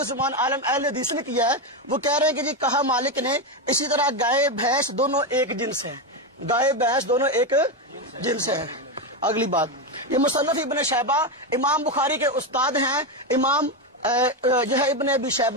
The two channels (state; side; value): normal; both; correlation 0.11